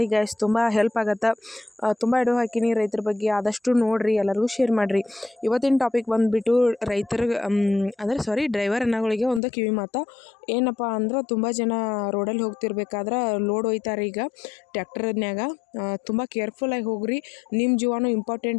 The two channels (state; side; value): drops out; right; at 9.4 s